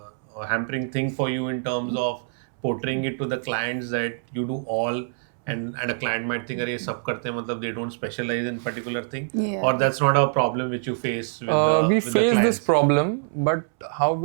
hampering thing for you in terms of portraying it to the clients that you do all, and a client might think, "Arey, sab karte hain," matlab they don't specialize in particular thing, Yeah. or that's not a problem which you face with the We with the face this clients? problem, but how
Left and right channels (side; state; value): left; silent; 62 dB below the other